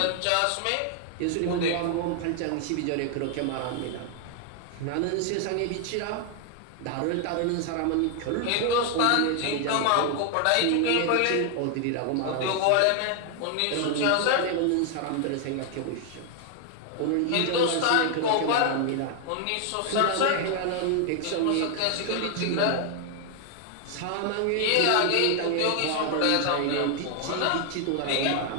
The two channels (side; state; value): both; different; correlation 0.00